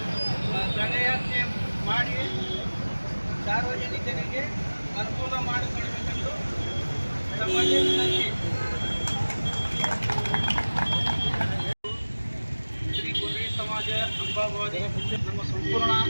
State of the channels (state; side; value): inverted; both; correlation -1.00